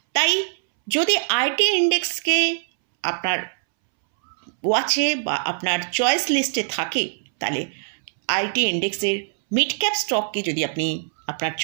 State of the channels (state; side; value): silent; left; 64 dB below the other